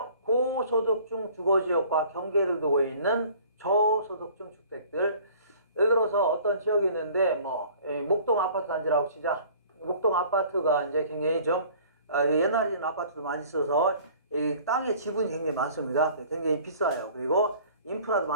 고소득층 주거지역과 경계를 두고 있는 저소득층 주택들. 예를 들어서 어떤 지역이 있는데, 목동 아파트 단지라고 치자. 목동 아파트가 이제 굉장히 좀, 옛날에는 아파트도 많이 있어서, 이 땅의 지분이 굉장히 많습니다. 굉장히 비싸요. 그리고 인프라도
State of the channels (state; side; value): inverted; both; correlation -0.50